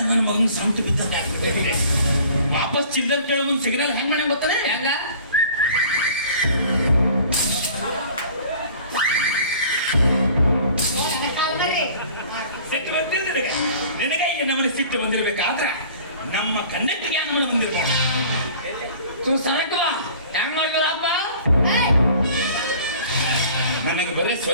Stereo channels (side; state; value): both; inverted; correlation -0.48